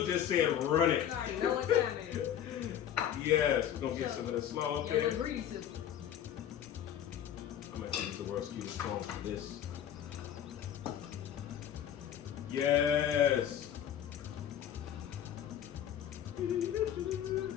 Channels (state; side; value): quieter; right; 10.0 dB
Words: just said run it. You already know what time it is. Yes, we're gonna get some of that slaw up there. The grease system. I'm gonna use the world's cutest phone for this. Yes. I